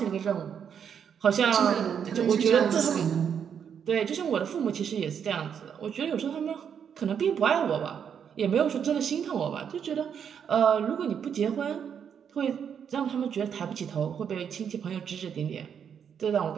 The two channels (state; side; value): quieter; left; 7.8 dB